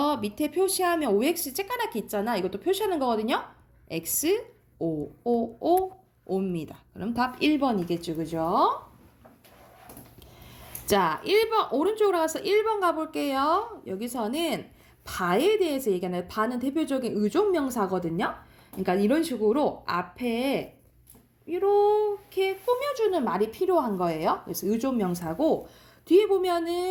밑에 표시하면 OX 쬐까맣게 있잖아. 이것도 표시하는 거거든요. X, O, O, O, O입니다. 그럼 답 1번이겠죠. 그죠? 자, 1번, 오른쪽으로 가서 1번 가볼게요. 여기서는 바에 대해서 얘기하는, 바는 대표적인 의존명사거든요. 그러니까 이런 식으로 앞에 이렇게 꾸며주는 말이 필요한 거예요. 그래서 의존명사고, 뒤에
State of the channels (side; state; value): both; identical; correlation 1.00